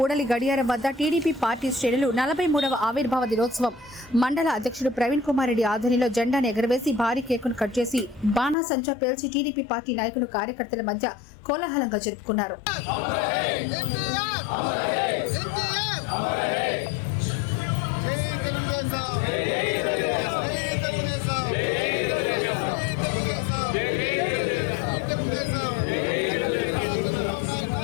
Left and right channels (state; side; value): drops out; right; at 8.6 s